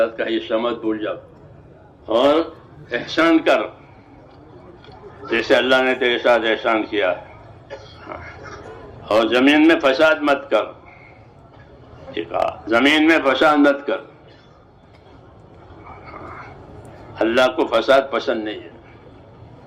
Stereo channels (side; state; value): both; identical; correlation 1.00